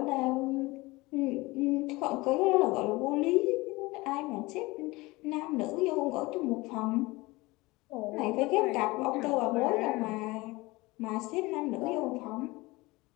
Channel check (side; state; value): right; quieter; 21.9 dB